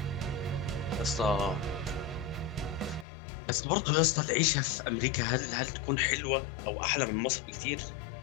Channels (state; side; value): drops out; right; at 3.1 s